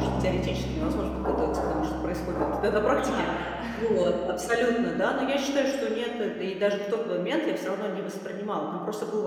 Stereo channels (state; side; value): identical; both; correlation 1.00